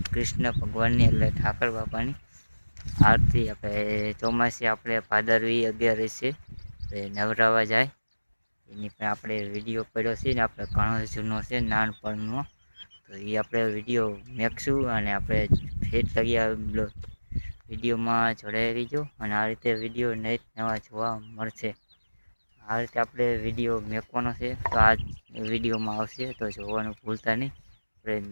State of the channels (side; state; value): both; inverted; correlation -1.00